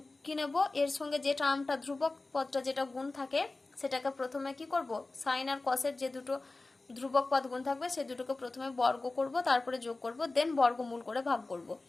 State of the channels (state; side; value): quieter; right; 3.3 dB